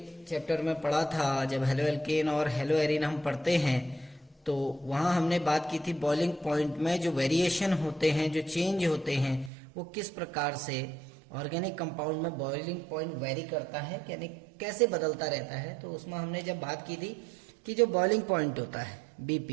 चैप्टर में पढ़ा था, जब हेलो एल्केन और हेलो एरिन हम पढ़ते हैं, तो वहां हमने बात की थी बॉइलिंग पॉइंट में जो वेरिएशन होते हैं, जो चेंज होते हैं, वो किस प्रकार से ऑर्गेनिक कंपाउंड में बॉइलिंग पॉइंट वेरी करता है, यानी कैसे बदलता रहता है। तो उसमें हमने जब बात की थी कि जो बॉइलिंग पॉइंट होता है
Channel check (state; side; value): drops out; left; at 9.5 s